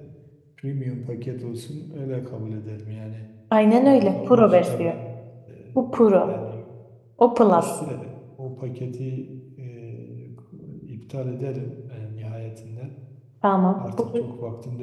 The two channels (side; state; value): both; identical; correlation 1.00